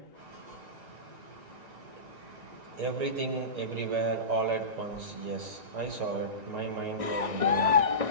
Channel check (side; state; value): left; late; 1.9 ms